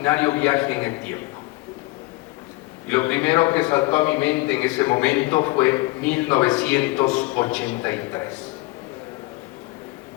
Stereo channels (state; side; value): quieter; right; 22.1 dB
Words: viaje en el tiempo. Y lo primero que saltó a mi mente en ese momento fue 1983.